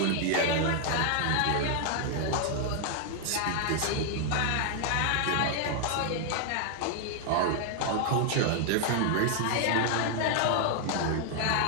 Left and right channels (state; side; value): different; both; correlation 0.00